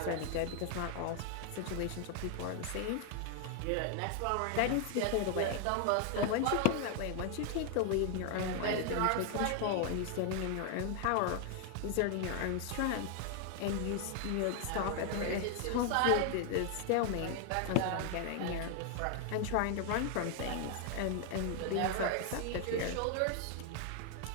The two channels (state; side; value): different; both; correlation 0.00